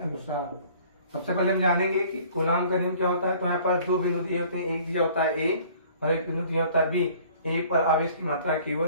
सबसे पहले हम जानेंगे कि कूलाम का नियम क्या होता है। तो हमारे पास दो बिंदु दिए होते हैं, एक दिया होता है A और एक बिंदु दिया होता है B। A पर आवेश की मात्रा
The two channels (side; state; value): both; inverted; correlation -0.53